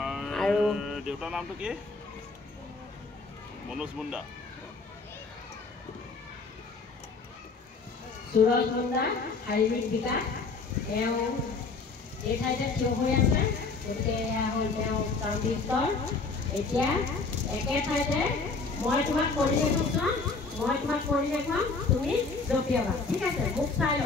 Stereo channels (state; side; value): quieter; right; 4.2 dB